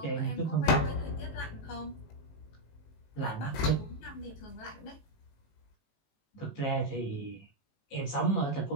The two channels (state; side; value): late; right; 19 ms